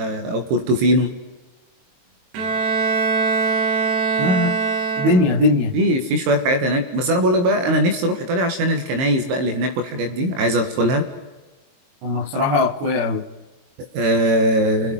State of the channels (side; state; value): left; late; 22 ms